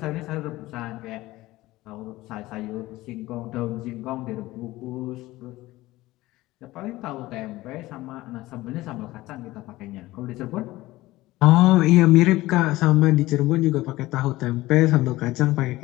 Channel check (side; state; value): right; quieter; 18.1 dB